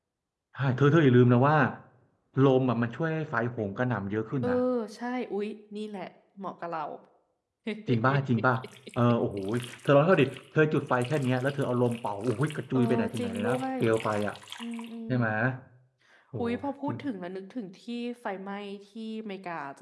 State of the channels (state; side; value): identical; both; correlation 1.00